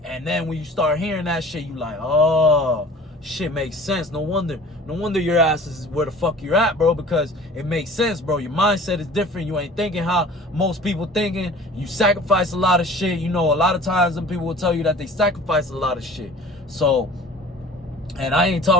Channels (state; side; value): normal; both; correlation 0.45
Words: And then when you start hearing that shit, you like, oh, shit makes sense. No wonder your ass is where the fuck you're at, bro, because it makes sense, bro. Your mindset is different. You ain't thinking how most people thinking. You sacrifice a lot of shit. You know, a lot of times some people will tell you that they sacrifice a lot of shit. So, and I ain't